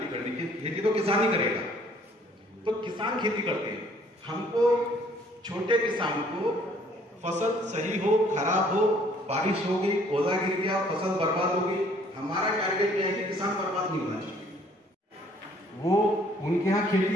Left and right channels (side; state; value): both; normal; correlation 0.60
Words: करनी, खेती तो किसान ही करेगा, तो किसान खेती करते हैं। हमको छोटे किसान को फसल सही हो, खराब हो, बारिश हो गई, ओला गिर गया, फसल बर्बाद हो गई, हमारा टारगेट यह है कि किसान बर्बाद नहीं होना चाहिए। वो उनके यहाँ